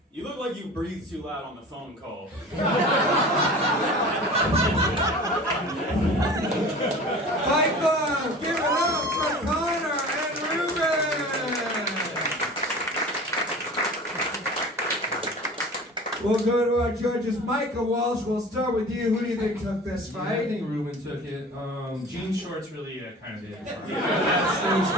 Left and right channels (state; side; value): normal; both; correlation 0.39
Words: You look like you breathe too loud on the phone call. Fight Club, give it up for Conor and Reuben! We'll go to our judges. Micah, Walsh, we'll start with you. Who do you think took this I fight? think Reuben took it. Jean shorts really kind of did. That was